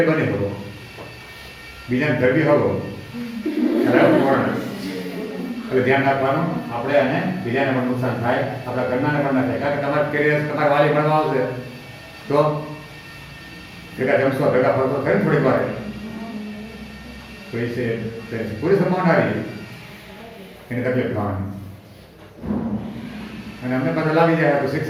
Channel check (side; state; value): both; identical; correlation 1.00